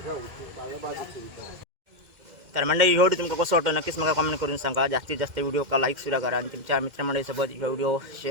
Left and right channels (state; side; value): late; left; 2.1 ms